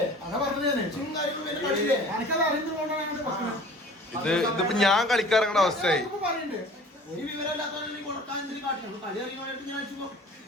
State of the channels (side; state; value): both; normal; correlation 0.45